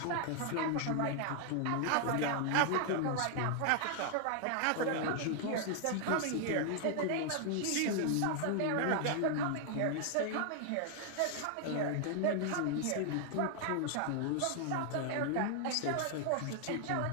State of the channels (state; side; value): different; both; correlation 0.00